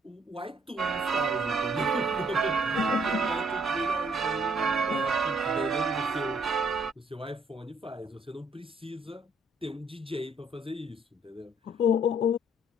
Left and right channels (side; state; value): both; normal; correlation 0.65